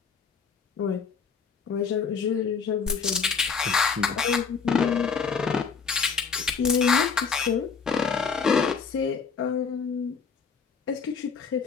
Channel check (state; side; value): quieter; right; 5.7 dB